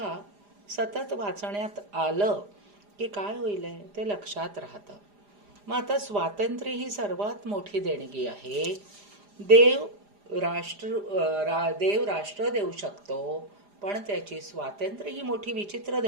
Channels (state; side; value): late; left; 4.9 ms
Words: सतत वाचण्यात आलं की काय होईल ते लक्षात राहतं. मग आता स्वातंत्र्य ही सर्वात मोठी देणगी आहे. देव राष्ट्र देऊ शकतो, पण त्याची स्वातंत्र्य ही मोठी विचित्र